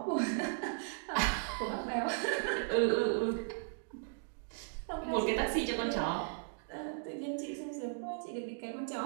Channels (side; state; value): left; silent; digital silence